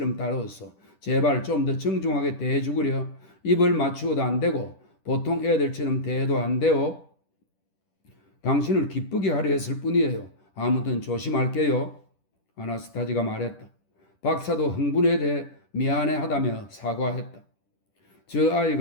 다루었어. 제발 좀 더 정중하게 대해주구려. 입을 맞추어도 안 되고 보통 애들처럼 대해도 안 돼요. 당신을 기쁘게 하려 했을 뿐이에요. 아무튼 조심할게요. 아나스타지가 말했다. 박사도 흥분에 대해 미안해하다며 사과했다. 저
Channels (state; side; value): late; right; 10 ms